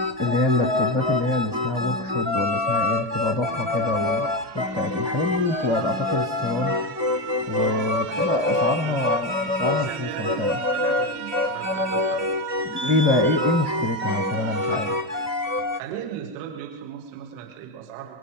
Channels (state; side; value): late; left; 2.4 ms